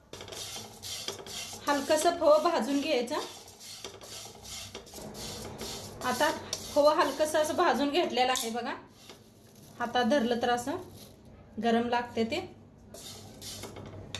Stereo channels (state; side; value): identical; both; correlation 1.00